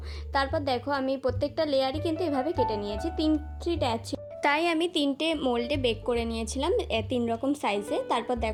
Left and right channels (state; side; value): identical; both; correlation 1.00